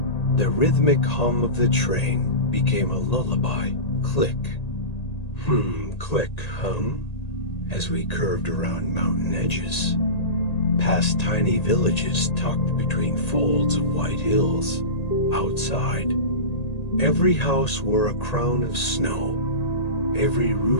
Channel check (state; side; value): late; right; 1.8 ms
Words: The rhythmic hum of the train became a lullaby. Click, click, hum, as we curved around mountain edges, past tiny villages tucked between folds of white hills. Outside, every house wore a crown of snow. Every